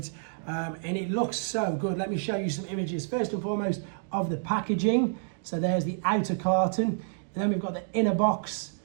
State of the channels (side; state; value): left; silent; digital silence